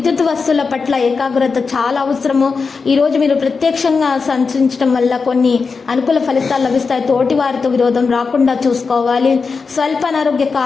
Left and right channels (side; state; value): right; quieter; 4.9 dB